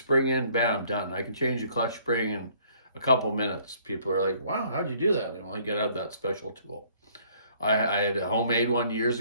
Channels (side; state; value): both; inverted; correlation -0.60